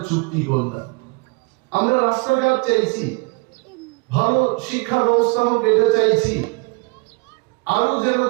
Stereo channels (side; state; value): left; quieter; 30.0 dB